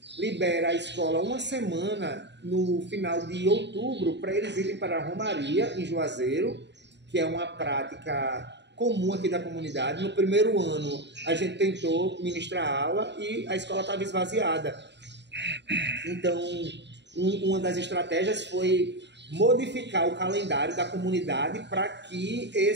libera a escola uma semana no final de outubro para eles irem para a romaria em Juazeiro, que é uma prática comum aqui da comunidade. No primeiro ano a gente tentou ministrar aula e a escola estava esvaziada. Então, uma das estratégias foi modificar o calendário da comunidade para que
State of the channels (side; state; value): left; late; 0.51 ms